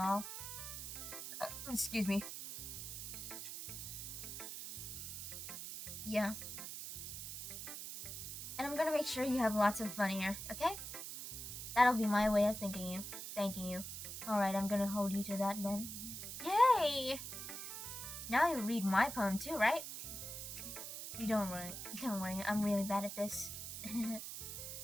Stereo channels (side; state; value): right; noise; hiss, 7 dB below the sound